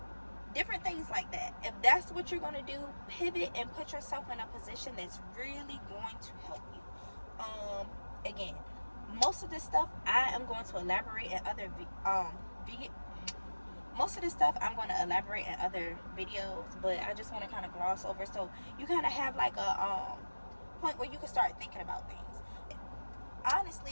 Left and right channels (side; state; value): both; inverted; correlation -1.00